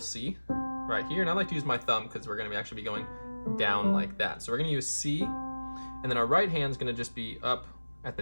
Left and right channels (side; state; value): both; inverted; correlation -1.00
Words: right here, and I like to use my thumb because we're going to actually be going down like that. So we're going to use C, and then our right hand is going to just be up at